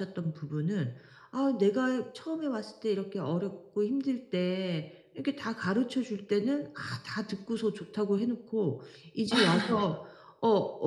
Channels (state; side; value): identical; both; correlation 1.00